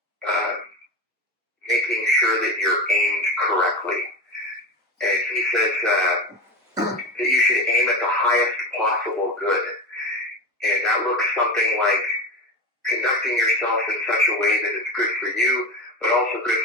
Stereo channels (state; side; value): normal; both; correlation 0.23